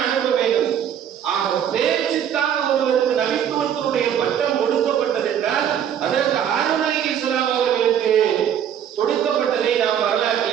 அனுப்ப வேண்டும். ஆக பேச்சுக்காக ஒருவருக்கு நபித்துவத்தினுடைய பட்டம் கொடுக்கப்பட்டது என்றால், அதற்கு ஹாரூன் அலைஹிஸ்ஸலாம் அவர்களுக்கு கொடுக்கப்பட்டதை நாம்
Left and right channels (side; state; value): left; quieter; 9.2 dB